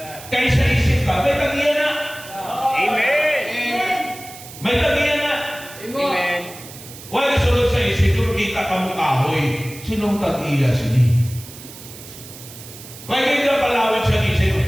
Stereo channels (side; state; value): right; noise; hiss, 16 dB below the sound